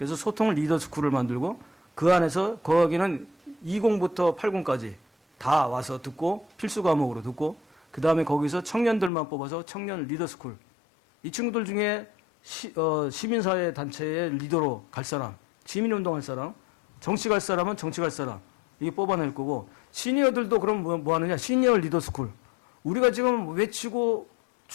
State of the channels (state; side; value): drops out; right; at 9.1 s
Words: 소통 리더 스쿨을 만들고 그 안에서 거기는 20부터 80까지 다 와서 듣고 필수 과목으로 듣고 그 다음에 거기서 청년들만 뽑아서 청년 리더 스쿨. 이 친구들 중에 시민사회 단체의 리더로 갈 사람, 시민운동 할 사람, 정치 갈 사람은 정치 갈 사람 이게 뽑아낼 거고 시니어들도 그럼 뭐 하느냐 시니어 리더 스쿨. 우리가 지금 외치고